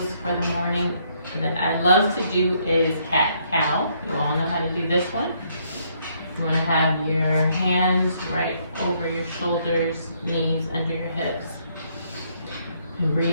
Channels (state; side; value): inverted; both; correlation -0.70